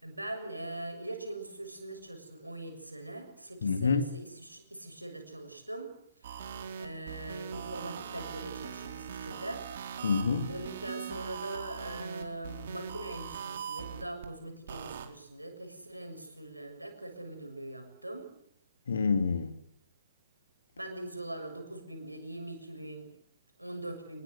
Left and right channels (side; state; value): both; inverted; correlation -0.75